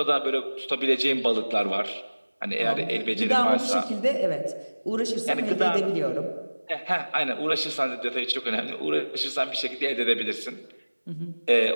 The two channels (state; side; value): inverted; both; correlation -1.00